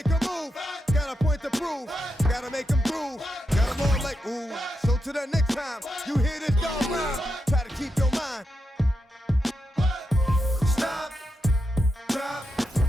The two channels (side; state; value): both; normal; correlation 0.86